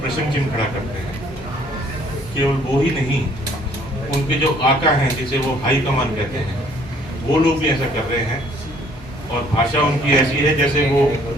चिन्ह खड़ा करते हैं, केवल वो ही नहीं, उनके जो आका हैं जिसे वो हाई कमान कहते हैं, वो लोग भी ऐसा कर रहे हैं। और भाषा उनकी ऐसी है जैसे वो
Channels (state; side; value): normal; both; correlation 0.60